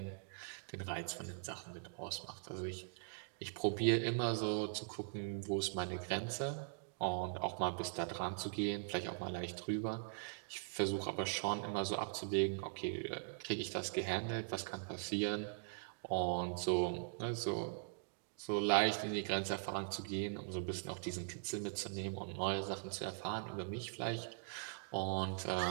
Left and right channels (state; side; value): silent; left; digital silence